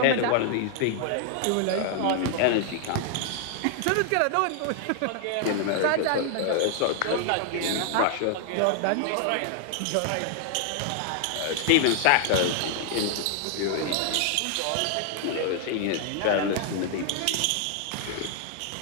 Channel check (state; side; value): different; both; correlation 0.00